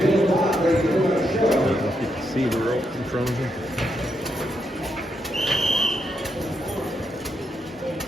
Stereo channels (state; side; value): normal; both; correlation 0.81